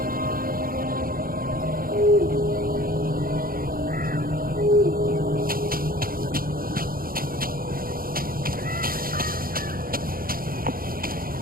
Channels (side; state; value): left; late; 0.42 ms